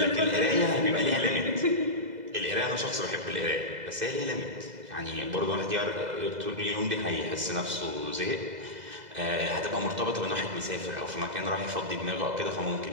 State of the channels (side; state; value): left; late; 2.0 ms